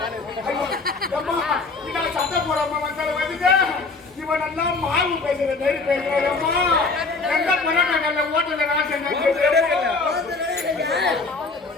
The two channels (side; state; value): right; quieter; 3.9 dB